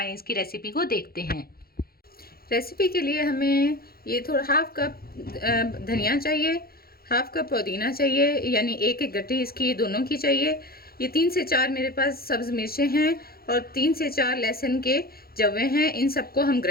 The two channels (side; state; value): right; late; 0.44 ms